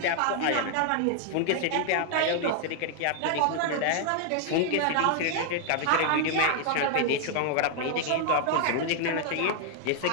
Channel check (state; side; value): different; both; correlation 0.00